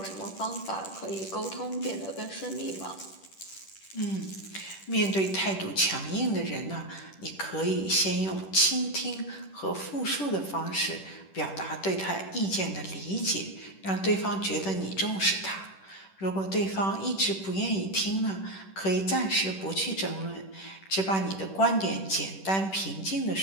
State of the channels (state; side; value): late; right; 10 ms